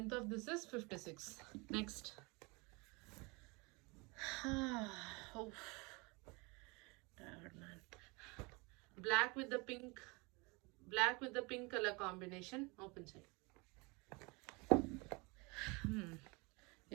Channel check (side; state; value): left; quieter; 27.6 dB